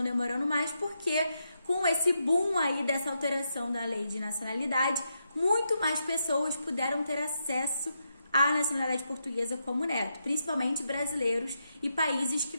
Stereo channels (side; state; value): both; inverted; correlation -0.83